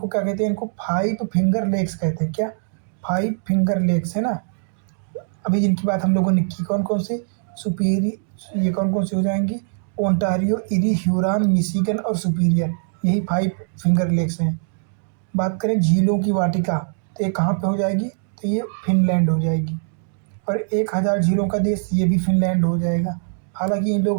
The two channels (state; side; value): silent; left; digital silence